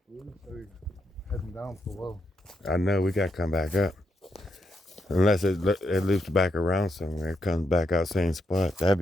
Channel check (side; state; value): both; normal; correlation 0.80